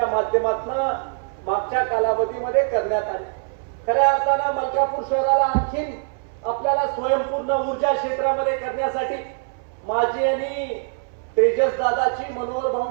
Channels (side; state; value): left; silent; 63 dB below the other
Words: माध्यमातून मागच्या कालावधीमध्ये करण्यात आली. खऱ्या अर्थानं मलकापूर शहराला आणखीन आपल्याला स्वयंपूर्ण ऊर्जा क्षेत्रामध्ये करण्यासाठी माझी आणि तेजस दादाची, मनोहर